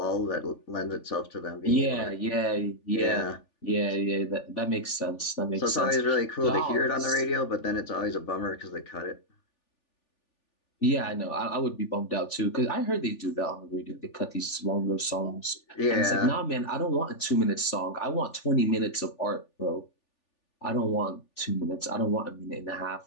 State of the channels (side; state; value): right; late; 3.4 ms